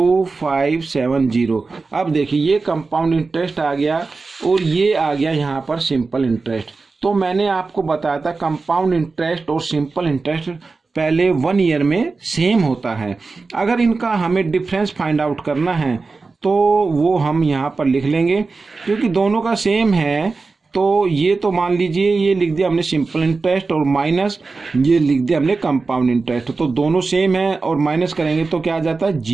अब देखिए ये कंपाउंड इंटरेस्ट आ गया और ये आ गया यहाँ पर सिंपल इंटरेस्ट। तो मैंने आपको बताया था कंपाउंड इंटरेस्ट और सिंपल इंटरेस्ट पहले 1 ईयर में सेम होता है। अगर इनका हमें डिफरेंस फाइंड आउट करना है तो वो हम यहाँ पर लिख लेंगे, क्योंकि दोनों का सेम है। तो ये तो मान लीजिए ये लिख दिया हमने सिंपल इंटरेस्ट और माइनस ये लिख दिया हमने कंपाउंड इंटरेस्ट। तो दोनों सेम है और माइनस करेंगे तो क्या आ जाता है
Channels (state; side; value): quieter; left; 4.0 dB